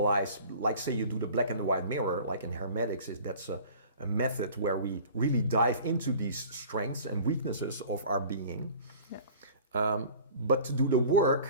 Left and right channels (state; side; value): inverted; both; correlation -0.44